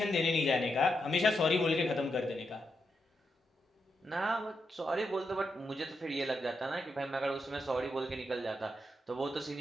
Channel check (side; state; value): both; normal; correlation 0.84